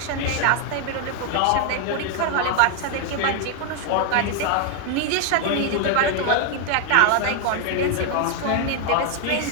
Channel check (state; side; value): different; both; correlation 0.00